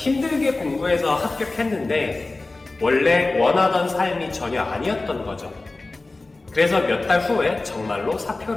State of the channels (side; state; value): right; quieter; 3.2 dB